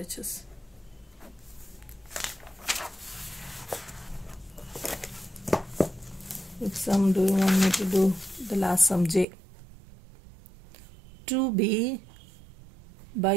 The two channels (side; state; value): left; drops out; at 9.2 s